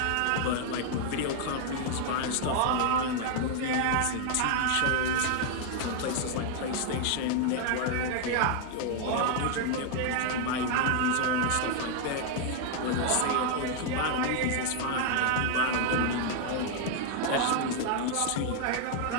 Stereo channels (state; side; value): different; both; correlation 0.00